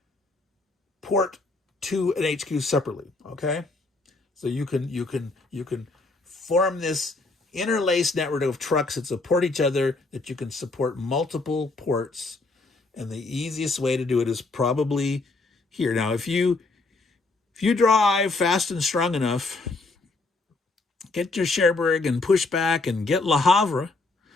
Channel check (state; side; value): quieter; right; 3.4 dB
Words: port to an HQ separately. Okay? So you can form this interlaced network of trucks that support each other, that you can support multiple ports, and the easiest way to do it is probably here. Now, if you drive fast and strong enough, get your Cherbourg and push back and get Le Havre,